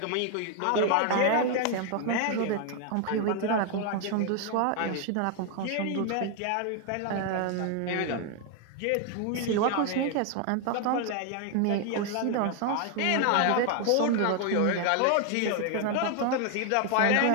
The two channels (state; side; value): different; both; correlation 0.00